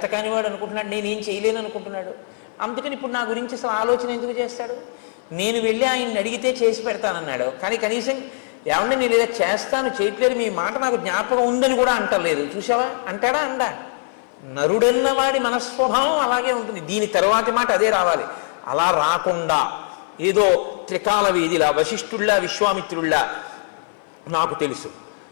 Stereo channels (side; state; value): right; silent; 58 dB below the other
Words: అనుకుంటున్నాడు, నేనేం చేయలేను అనుకుంటున్నాడు, అందుకని ఇప్పుడు నా గురించి అసలు ఆలోచన ఎందుకు చేస్తాడు? నేను వెళ్ళి ఆయన్ని అడిగితే చేసి పెడతానన్నాడు, కానీ కనీసం ఏమంటే నేను ఇలా చేస్తాను చేయట్లేదు, మీ మాట నాకు జ్ఞాపకం ఉందని కూడా అంటలేదు. చూసావా, అంటాడా? అందా? నరుడన్న వాడి మనస్వభావం అలాగే ఉంటుంది. దీని తర్వాతి మాట అదే రావాలి. అలా రాకుండా ఏదో త్రికాల వేదిలా, వశిష్ఠుల్లా, విశ్వామిత్రుల్లా, నాకు తెలుసు